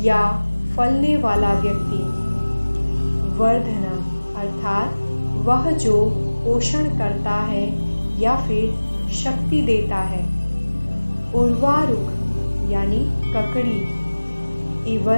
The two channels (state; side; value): inverted; both; correlation -1.00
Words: या फलने वाला व्यक्ति, वर्धनम अर्थात वह जो पोषण करता है या फिर शक्ति देता है, उर्वारुक यानी ककड़ी,